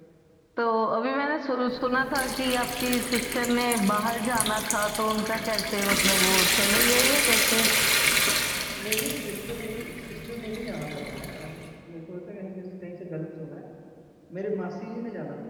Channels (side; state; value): both; identical; correlation 1.00